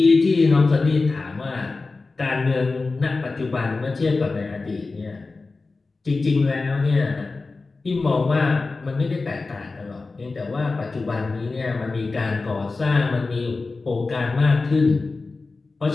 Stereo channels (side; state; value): right; quieter; 3.8 dB